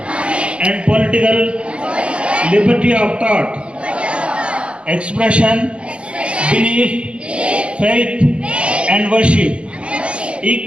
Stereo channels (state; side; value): late; left; 0.059 ms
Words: and political liberty of thought, expression, belief, faith, and worship,